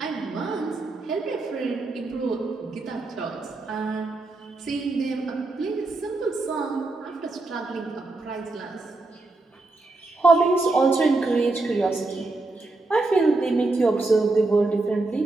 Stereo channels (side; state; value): left; quieter; 3.2 dB